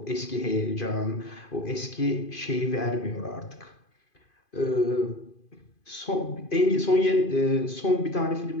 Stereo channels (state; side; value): late; right; 2.5 ms